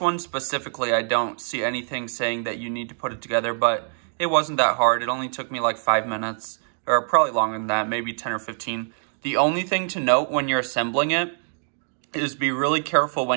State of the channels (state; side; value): silent; left; 57 dB below the other